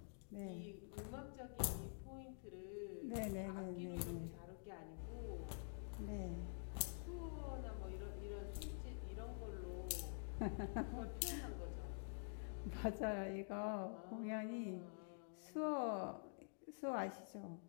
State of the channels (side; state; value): right; silent; digital silence